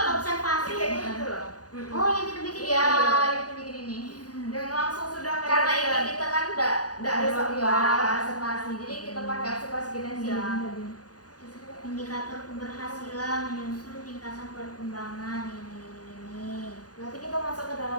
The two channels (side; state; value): right; late; 0.68 ms